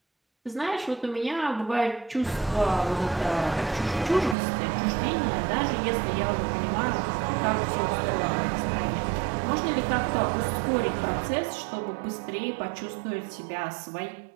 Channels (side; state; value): left; drops out; at 4.4 s